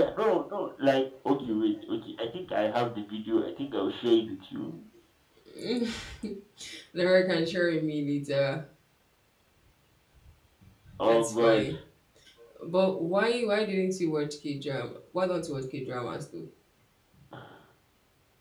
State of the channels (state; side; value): identical; both; correlation 1.00